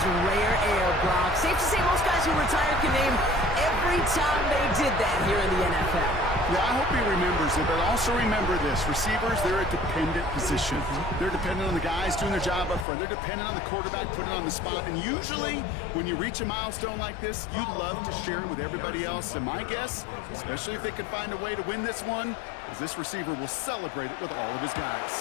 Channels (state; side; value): drops out; right; at 12.9 s